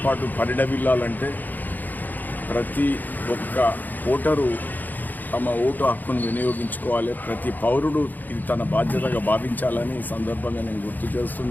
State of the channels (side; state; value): right; late; 0.085 ms